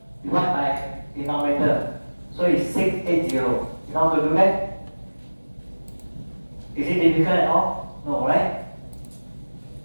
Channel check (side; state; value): both; inverted; correlation -1.00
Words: divided by denominator. So it's 680. You know how to do that? Is it difficult at all? No, right?